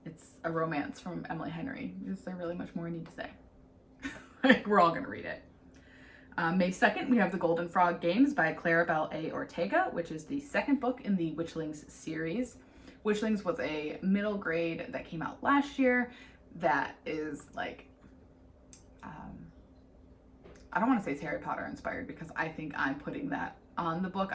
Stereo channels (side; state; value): both; identical; correlation 1.00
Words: It's a romance from Emily Henry. Is there really much more I need to say? Like, we're all gonna read it. May 2nd, we have The Golden Frog Games by Claribel A. Ortega, which is the second book in the Witchlings series. Witchlings was a middle grade that came out last year that is like, I don't want to say it's Harry Potter inspired because I think I'm putting that on the book.